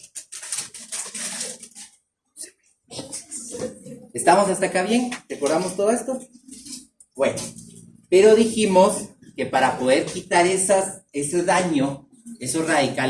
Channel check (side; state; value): both; identical; correlation 1.00